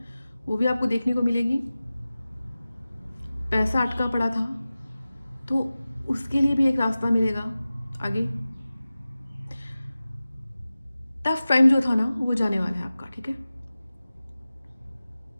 वो भी आपको देखने को मिलेगी। पैसा अटका पड़ा था तो उसके लिए भी एक रास्ता मिलेगा आगे। टफ टाइम जो था ना वो जाने वाला है आपका, ठीक है।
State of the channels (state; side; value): inverted; both; correlation -0.96